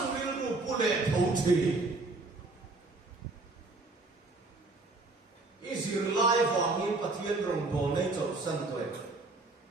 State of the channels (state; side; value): quieter; left; 3.3 dB